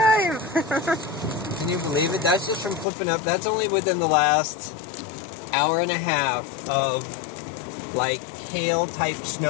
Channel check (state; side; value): drops out; right; at 2.9 s